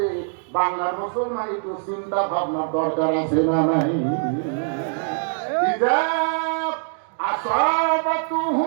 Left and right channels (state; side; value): silent; left; digital silence